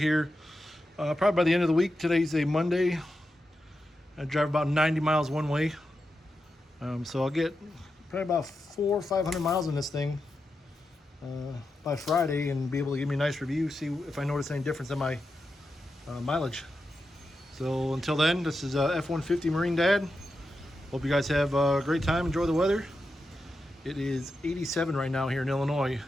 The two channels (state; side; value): normal; both; correlation 0.88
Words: probably by the end of the week. Today's a Monday. I drive about 90 miles one way. So I'll get probably about 400 or 500 miles in this thing by Friday and be able to give me a nice review, see if I notice any difference in my mileage. So until then, this is F-150 Marine Dad. Hope you guys have a great time, enjoy the weather. It is 87 right now here in Illinois,